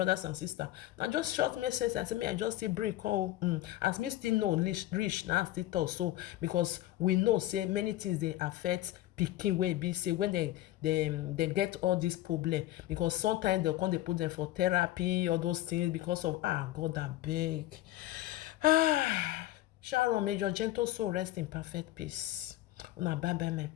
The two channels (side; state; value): right; quieter; 15.2 dB